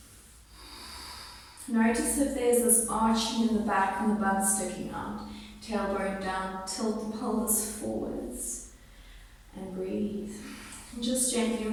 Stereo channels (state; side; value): identical; both; correlation 1.00